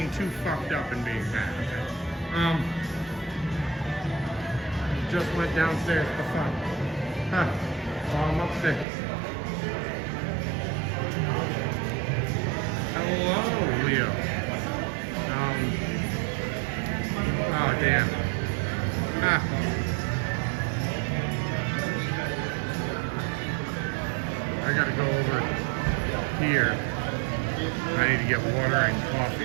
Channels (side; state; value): left; drops out; at 8.8 s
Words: too fucked up and being bad. Just went downstairs for fun. Huh. Oh, I'm upstairs. Hello, Leo. Oh damn. I gotta go over here. I need to get water and